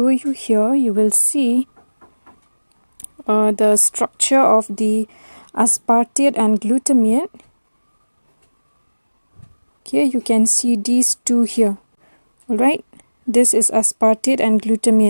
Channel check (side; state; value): both; inverted; correlation -1.00